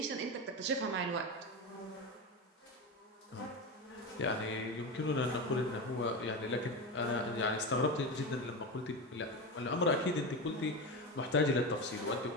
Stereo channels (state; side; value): normal; both; correlation 0.20